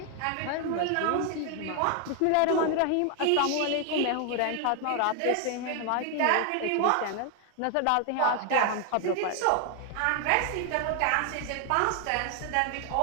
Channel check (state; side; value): different; both; correlation 0.00